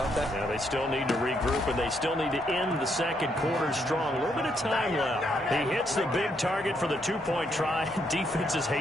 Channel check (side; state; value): both; normal; correlation 0.75